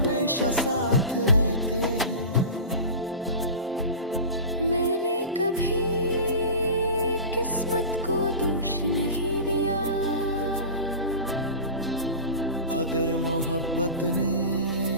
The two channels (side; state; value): both; inverted; correlation -0.31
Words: साथ रहते हैं। मैंने कभी किस्मत को दोष नहीं दिया। अगर मोहब्बत